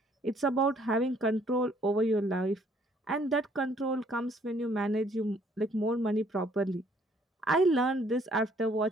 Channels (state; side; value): normal; both; correlation 0.63